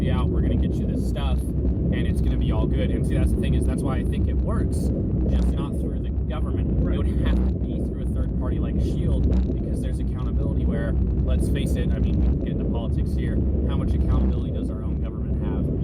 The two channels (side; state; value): both; identical; correlation 1.00